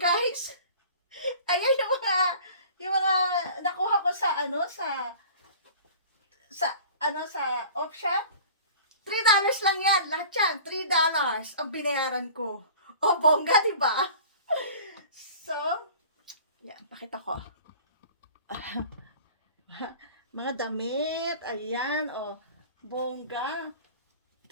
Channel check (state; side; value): inverted; both; correlation -0.44